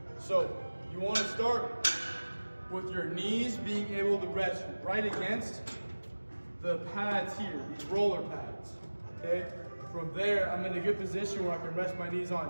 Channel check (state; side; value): inverted; both; correlation -1.00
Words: So you want to start with your knees being able to rest right against the pads here, these roller pads, okay? From there, I'm in a good position where I can rest my knees